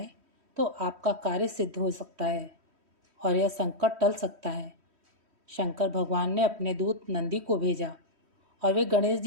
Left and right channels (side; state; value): left; late; 3.1 ms